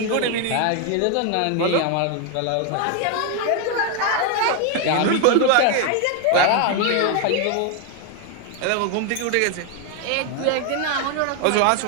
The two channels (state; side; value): different; both; correlation 0.01